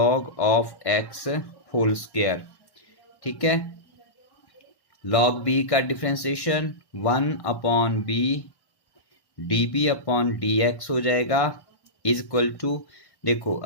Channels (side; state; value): right; late; 1.1 ms